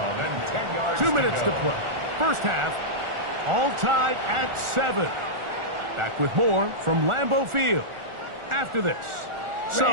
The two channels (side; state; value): left; late; 1.4 ms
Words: and 10 yards. 2 minutes to go. play. First half, all tied at 7. Back with more from Lambeau Field after this.